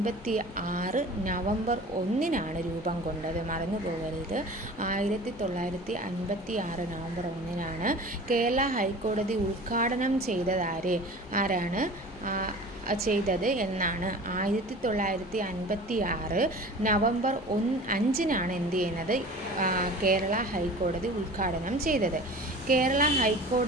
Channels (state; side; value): normal; both; correlation 0.40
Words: നവംബർ 1 രൂപം കൊണ്ടത്. മറന്നു പോകരുത്, 1956 നവംബർ 1 കേരള ഹൈക്കോടതി ഉദ്ഘാടനം ആരാണ് ചെയ്തത് എന്നാണ്. 1956 നവംബർ 5 എന്ത് ചെയ്യുന്നത്, കേരള ഹൈക്കോടതി ഉദ്ഘാടനം ചെയ്തത്. കേരള